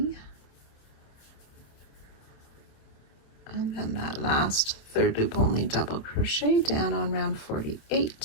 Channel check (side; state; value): right; late; 27 ms